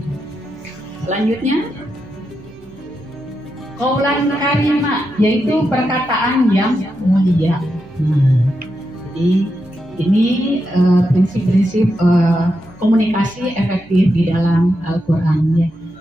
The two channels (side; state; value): right; noise; hum, 27 dB below the sound